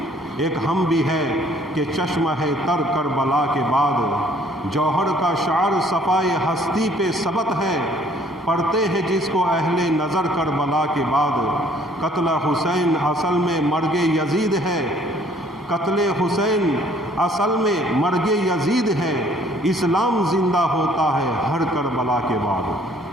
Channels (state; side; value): normal; both; correlation 0.59